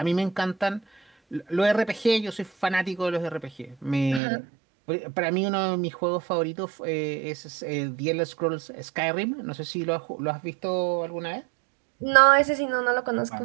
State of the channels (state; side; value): drops out; left; at 4.2 s